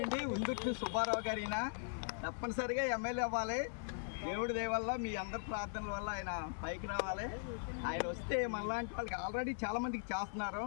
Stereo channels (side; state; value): right; silent; digital silence